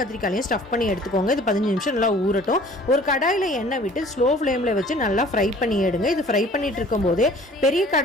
கத்திரிக்காயும் ஸ்டஃப் பண்ணி எடுத்துக்கோங்க. இது 15 நிமிஷம் நல்லா ஊறட்டும். ஒரு கடாயில் எண்ணெய் விட்டு ஸ்லோ ஃப்ளேமில் வச்சு நல்லா ஃப்ரை பண்ணி எடுங்க. இது ஃப்ரை பண்ணிட்டு இருக்கும்போது பெரிய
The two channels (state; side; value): normal; both; correlation 0.50